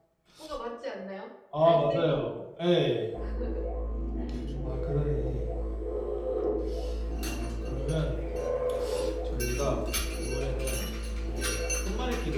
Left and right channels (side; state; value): both; identical; correlation 1.00